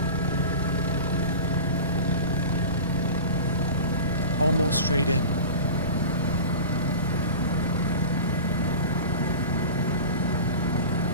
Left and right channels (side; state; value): both; inverted; correlation -0.33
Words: Almost straight in.